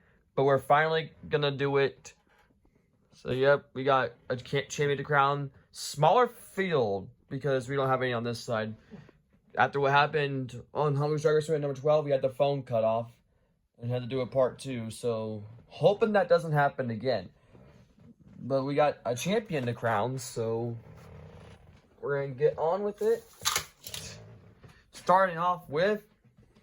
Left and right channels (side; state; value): both; identical; correlation 1.00